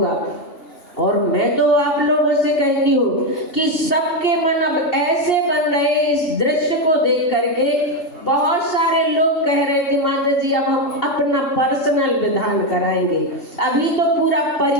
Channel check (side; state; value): right; late; 2.8 ms